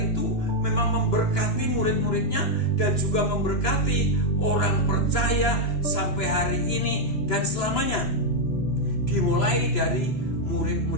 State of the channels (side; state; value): right; late; 2.9 ms